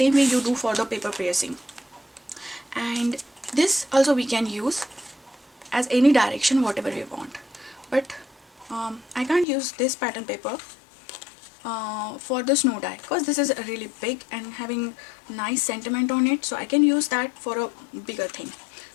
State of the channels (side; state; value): right; drops out; at 9.5 s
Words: way you do for the paper piercing. And this also we can use as any direction whatever we want, but I can't use this pattern paper for the snow die because this is really big and having nice sentiment on it, so I can use that for a bigger thing.